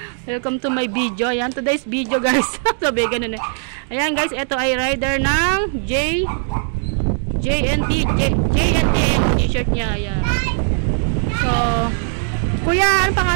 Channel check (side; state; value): left; silent; 67 dB below the other